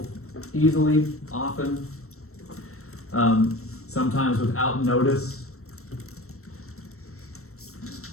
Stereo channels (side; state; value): right; late; 0.63 ms